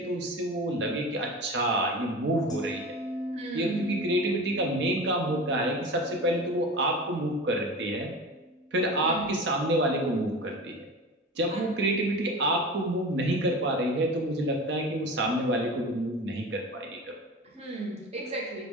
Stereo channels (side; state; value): both; normal; correlation 0.32